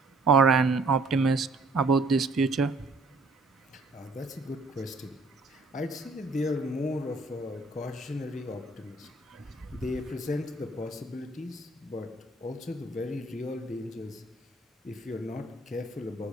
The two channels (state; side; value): quieter; left; 3.1 dB